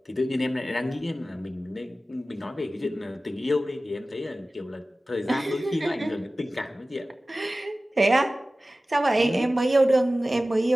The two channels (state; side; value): normal; both; correlation 0.96